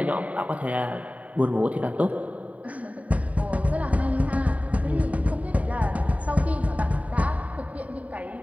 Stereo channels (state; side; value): late; left; 0.069 ms